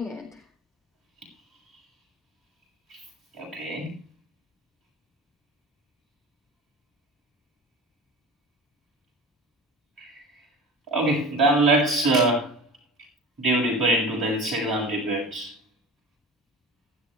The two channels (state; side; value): normal; both; correlation 0.34